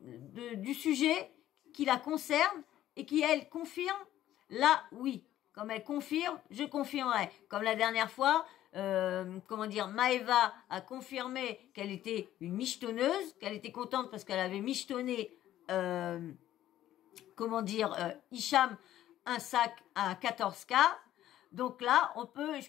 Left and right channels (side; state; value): right; quieter; 12.9 dB